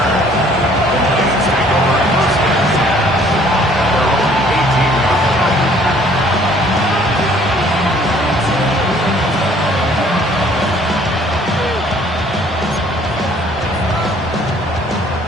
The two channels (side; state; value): both; normal; correlation 0.58